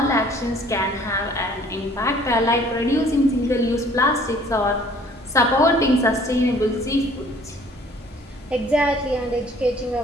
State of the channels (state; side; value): normal; both; correlation 0.55